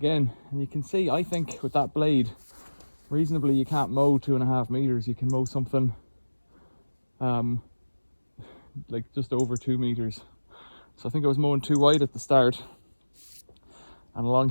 And you can see, I think with that blade, reasonably you can't mow 2.5 meters. You can mow something like just over 2 meters. So I think I was mowing too wide at the start, and along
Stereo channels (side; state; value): both; inverted; correlation -1.00